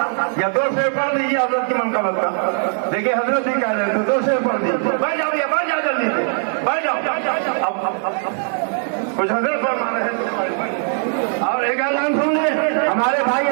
या 2 शेर पढ़ दीजिए हजरत की मनकबत का। देखिए हजरत ही कह रहे थे 2 शेर पढ़ दीजिए। बैठ जाओ भैया, बैठ जाओ जल्दी से, बैठ जाओ। अब कुछ हजरत फरमा रहे हैं। और एक ऐलान सुन ले, हमारे भाई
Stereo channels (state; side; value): silent; left; 56 dB below the other